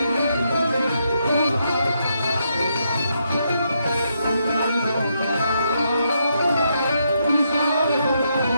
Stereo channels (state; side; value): inverted; both; correlation -0.79